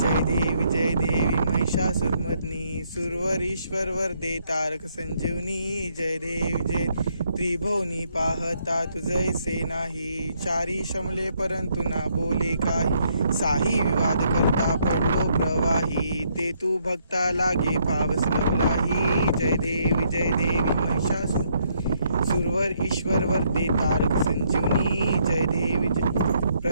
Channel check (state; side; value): inverted; both; correlation -0.72